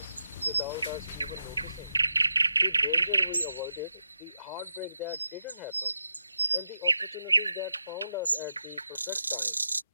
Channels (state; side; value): inverted; both; correlation -0.87